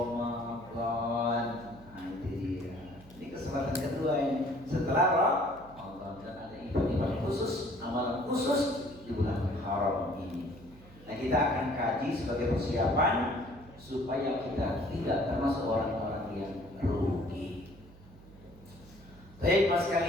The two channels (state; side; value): noise; right; hum, 21 dB below the sound